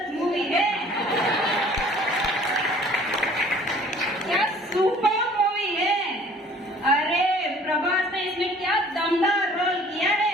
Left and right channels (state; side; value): normal; both; correlation 0.52